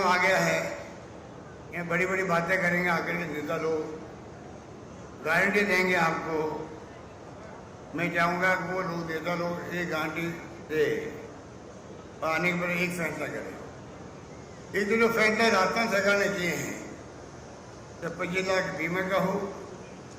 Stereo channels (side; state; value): both; identical; correlation 1.00